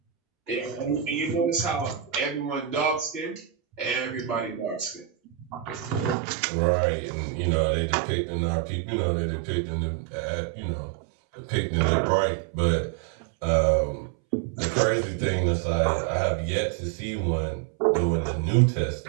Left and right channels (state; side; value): drops out; left; at 6.2 s